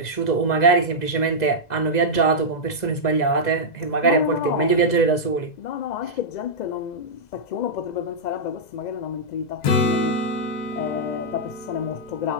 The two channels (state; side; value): late; right; 2.0 ms